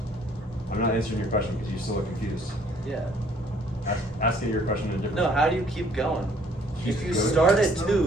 I'm not answering your question because you still look confused. Yeah. Asking your question in a different No, way. how do you keep going? If you Keep going. start at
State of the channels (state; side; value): normal; both; correlation 0.61